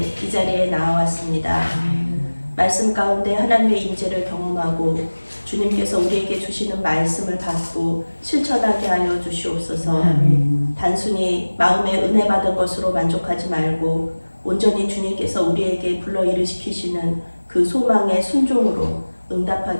이 자리에 나와왔습니다. 말씀 가운데 하나님의 임재를 경험하고 주님께서 우리에게 주시는 말씀을 받고 실천하게 하여 주시옵소서. 단순히 마음에 은혜 받은 것으로 만족하지 말고 온전히 주님께서 우리에게 불러일으키시는 그 소망의 순종으로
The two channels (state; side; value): inverted; both; correlation -1.00